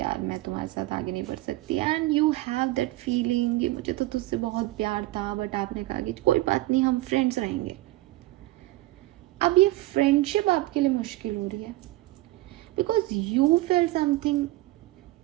मैं तुम्हारे साथ आगे नहीं बढ़ सकती, and you have that feeling कि मुझे तो तुझसे बहुत प्यार था, बट आपने कहा कि कोई बात नहीं हम फ्रेंड्स रहेंगे. अब ये फ्रेंडशिप आपके लिए मुश्किल हो रही है because you feel something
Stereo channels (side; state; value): left; quieter; 18.1 dB